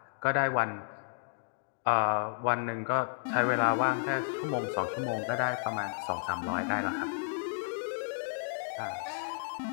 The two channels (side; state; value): right; silent; digital silence